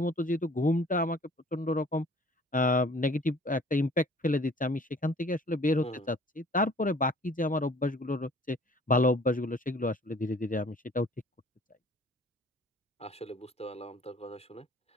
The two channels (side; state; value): both; normal; correlation 0.52